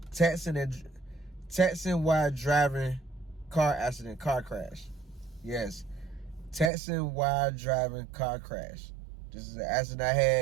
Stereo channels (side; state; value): left; drops out; at 6.7 s